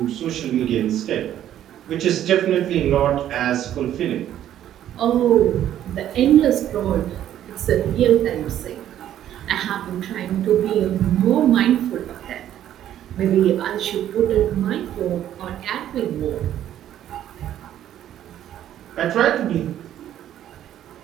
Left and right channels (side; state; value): left; quieter; 11.4 dB